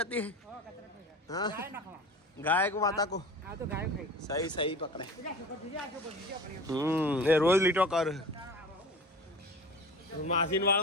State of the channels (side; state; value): both; normal; correlation 0.37